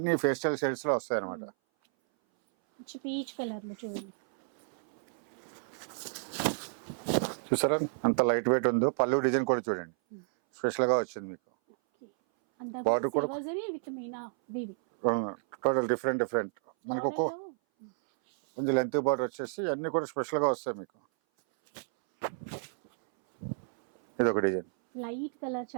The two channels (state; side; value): silent; left; 57 dB below the other